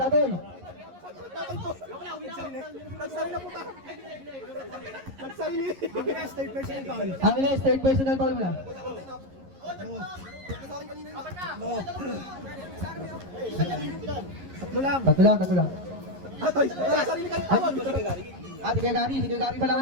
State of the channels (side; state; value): left; late; 11 ms